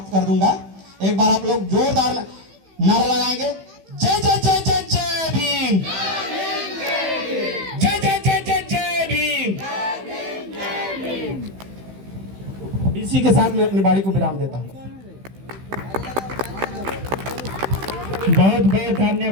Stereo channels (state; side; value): late; left; 15 ms